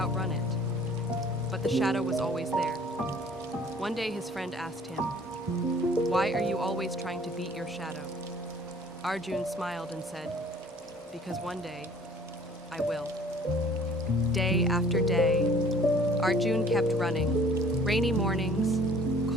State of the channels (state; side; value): normal; both; correlation 0.53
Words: it. But the shadow was always there. One day his friend asked him, "Why are you always trying to beat your shadow?" Arjun smiled and said, "Because one day, I will." Day after day, Arjun kept running. Rainy mornings,